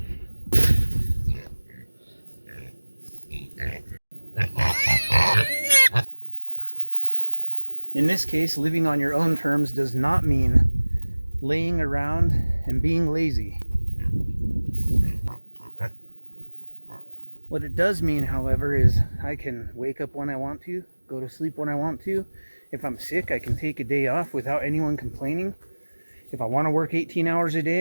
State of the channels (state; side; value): inverted; both; correlation -1.00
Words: In this case, living on your own terms does not mean laying around and being lazy. What it does mean, however, is I can wake up when I want to, go to sleep when I want to. If I'm sick, I can take a day off without anyone complaining. If I want to work 18 hours a